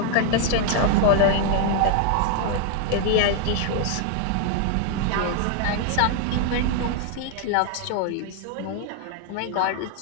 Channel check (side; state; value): both; different; correlation 0.00